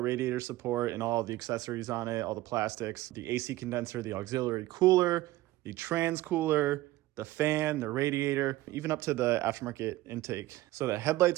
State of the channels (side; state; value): left; quieter; 17.1 dB